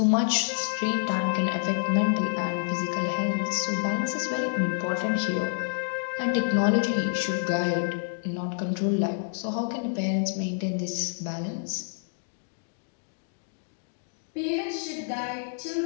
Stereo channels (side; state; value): right; silent; digital silence